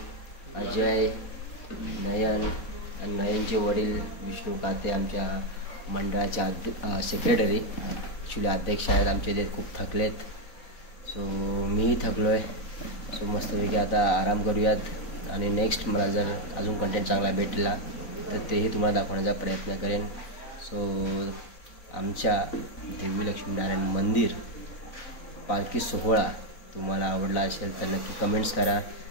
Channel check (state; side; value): late; right; 4.0 ms